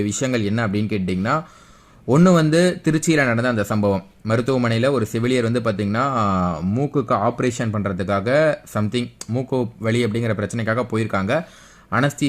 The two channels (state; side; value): identical; both; correlation 1.00